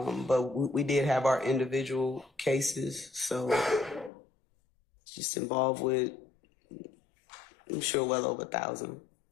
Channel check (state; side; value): drops out; right; at 4.1 s